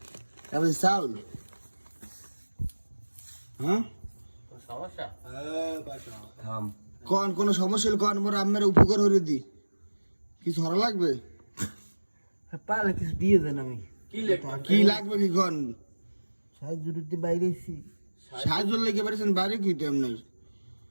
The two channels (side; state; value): both; inverted; correlation -1.00